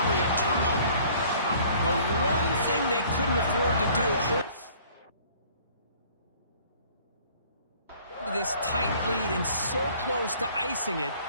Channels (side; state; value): both; inverted; correlation -0.55